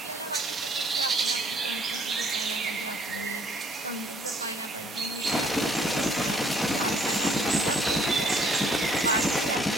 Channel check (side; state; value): both; normal; correlation 0.61